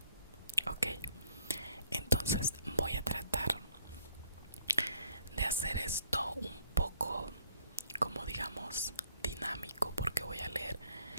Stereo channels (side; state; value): both; inverted; correlation -0.65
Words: Ok, entonces voy a tratar de hacer esto un poco, como digamos, dinámico, porque voy a leer